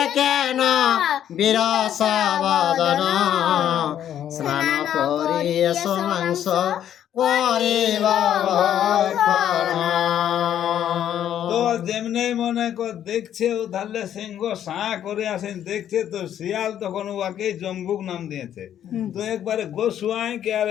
কেন বিরস বদন স্নান করি এসো মাংস করিব ভক্ষণ। তো যেমনি মনে কর দেখছে ও ধারলে সিংহ সাঁ করে আসেন দেখছে, তো শিয়াল তখন ওকে জম্বুক নাম দিয়েছে। তো একবারে গোসুয়াই কে আর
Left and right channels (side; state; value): right; quieter; 10.4 dB